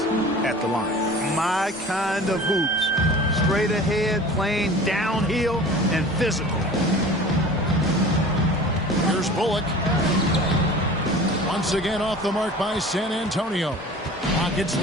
at the line. My kind of hoops. Straight ahead, playing downhill, and physical. Here's Bullock. Once again off the mark by San Antonio. Rockets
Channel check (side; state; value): both; normal; correlation 0.41